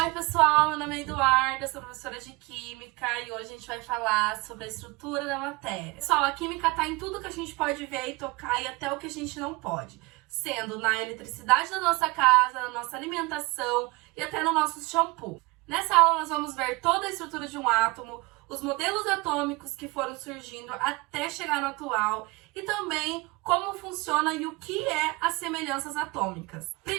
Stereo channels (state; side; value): quieter; left; 24.4 dB